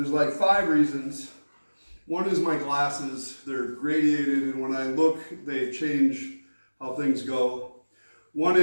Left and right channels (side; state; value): both; inverted; correlation -1.00